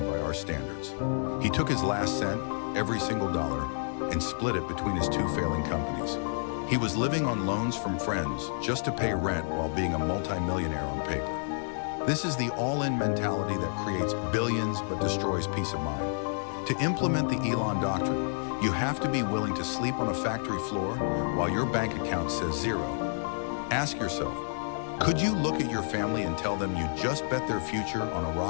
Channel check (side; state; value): right; silent; digital silence